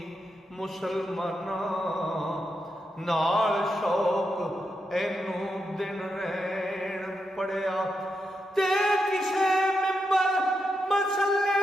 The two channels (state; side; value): normal; both; correlation 0.85